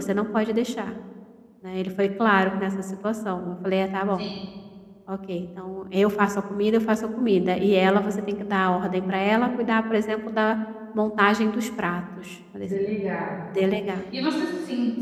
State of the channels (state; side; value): identical; both; correlation 1.00